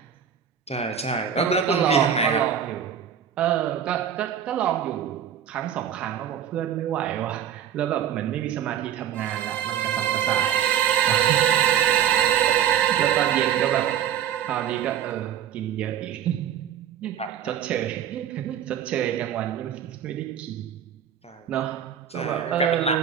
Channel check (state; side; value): quieter; left; 9.2 dB